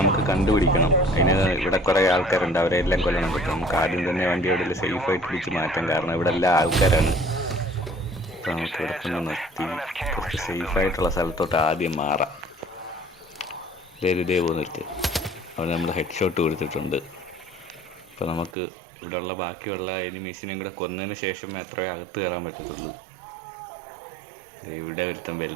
നമുക്ക് കണ്ടുപിടിക്കണം. അതിന് ഇവിടെ കുറേ ആൾക്കാരുണ്ട്, അവരെ എല്ലാം കൊല്ലണം കേട്ടോ. നമുക്ക് ആദ്യം തന്നെ വണ്ടി എവിടെയെങ്കിലും സേഫായിട്ട് പിടിച്ച് മാറ്റാം, കാരണം ഇവിടെ എല്ലാ ആൾക്കാരാണ്. അപ്പോൾ നമുക്ക് ഇവിടെ തന്നെ നിർത്തി കുറച്ച് സേഫായിട്ടുള്ള സ്ഥലത്തോട്ട് ആദ്യം മാറാം. ഇതേ പോന്നിട്ട് അവന് നമ്മൾ ഹെഡ് ഷോട്ട് കൊടുത്തിട്ടുണ്ട്. അപ്പോൾ നമുക്ക് ഇവിടെയുള്ള ബാക്കിയുള്ള എനിമീസിനെയും കൂടെ കൊന്നതിന് ശേഷം മാത്രമേ അകത്ത് കയറാൻ പറ്റത്തുള്ളൂ. ഇവിടെ ഒരുത്തൻ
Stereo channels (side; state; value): left; drops out; at 18.6 s